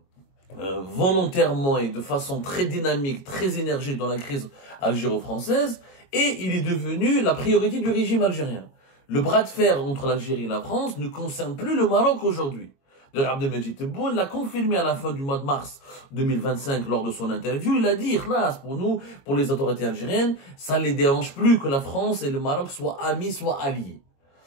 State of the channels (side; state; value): right; late; 22 ms